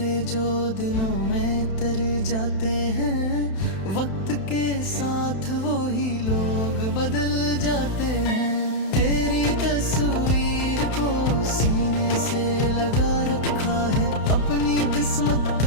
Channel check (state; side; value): late; right; 31 ms